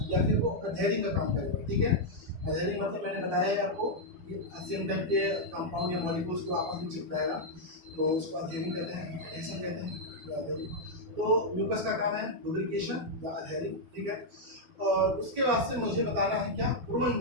या फिर वो अधेरिंग का काम करेगा। ठीक है, अधेरिंग मतलब मैंने बताया है आपको कि सेम टाइप के कंपाउंड या मॉलिक्यूल्स को आपस में चिपकाएगा, तो उसको अधेरिंग कहते हैं, एडेशन कहते हैं, तो adhering। तो म्यूकस का काम है लुब्रिकेशन या अधेरिंग। ठीक है, और उसके बाद से मुझे बताना है क्या,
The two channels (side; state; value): left; late; 12 ms